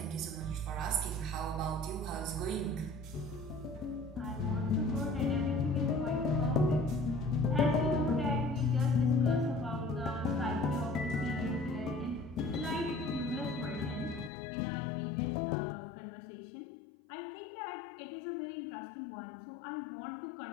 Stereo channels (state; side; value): drops out; right; at 14.3 s